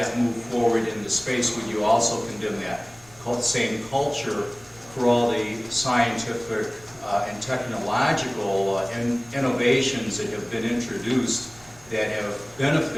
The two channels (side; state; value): right; noise; rumble, 26 dB below the sound